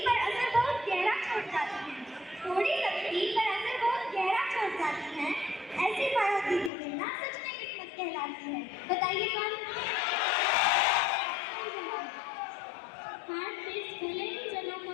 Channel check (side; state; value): right; drops out; at 6.7 s